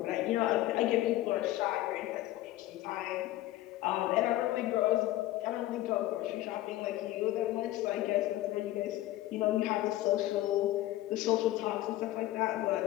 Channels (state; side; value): quieter; right; 15.7 dB